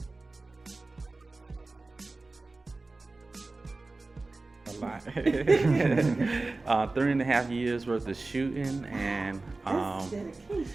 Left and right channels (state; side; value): quieter; left; 3.3 dB